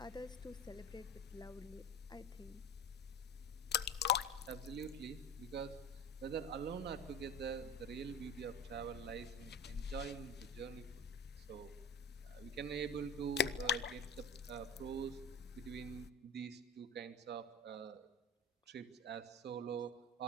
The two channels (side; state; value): both; normal; correlation 0.33